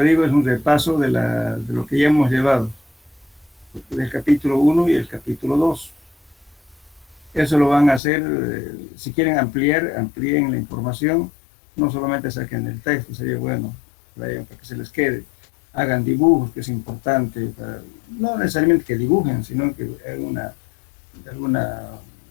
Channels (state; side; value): drops out; right; at 8.0 s